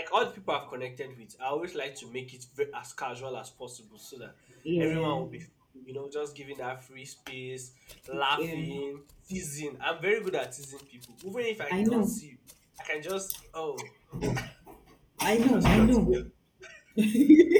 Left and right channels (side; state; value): both; identical; correlation 1.00